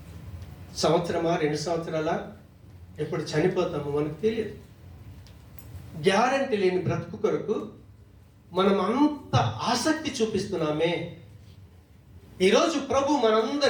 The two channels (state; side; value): identical; both; correlation 1.00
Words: సంవత్సరమా, 2 సంవత్సరాల, ఎప్పుడు చనిపోతామో మనకు తెలియదు. గ్యారంటీ లేని బ్రతుకు కొరకు మనం అంత ఆసక్తి చూపిస్తున్నామే. ఈరోజు ప్రభు